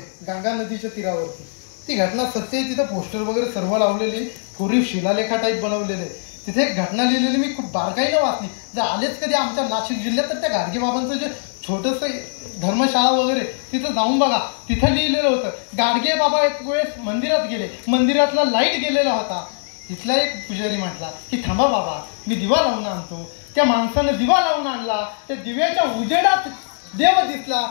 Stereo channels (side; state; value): right; silent; digital silence